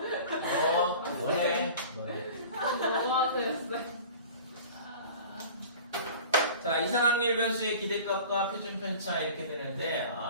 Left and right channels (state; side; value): inverted; both; correlation -0.41